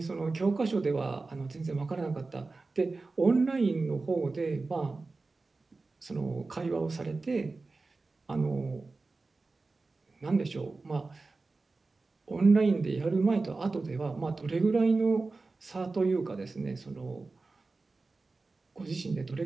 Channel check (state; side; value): quieter; left; 3.7 dB